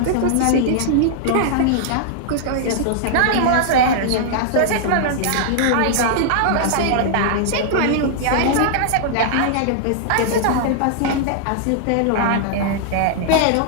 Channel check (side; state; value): both; different; correlation -0.01